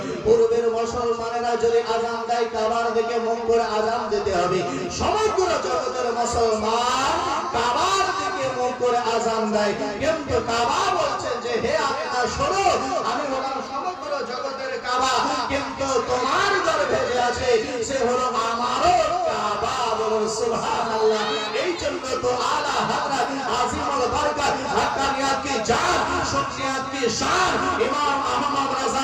পূর্বের মুসলমানেরা যদি আযান দেয় কাবার দিকে মুখ করে আযান দিতে হবে। সমগ্র জগতের মুসলমান কাবার দিকে মুখ করে আযান দেয়, কিন্তু কাবা বলছেন যে হে আপনারা শোনো, আমি হলাম সমগ্র জগতের কাবা, কিন্তু তোমার গর্ভে যে আছে সে হলো আমারও কাবা। বলুন সুবহানাল্লাহ। এই জন্য তো আলা হযরত আজিমুল বরকত হক্কানিয়াত কি জান, সুন্নিয়াত কি শান ইমাম আহমদ রাজা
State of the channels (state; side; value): identical; both; correlation 1.00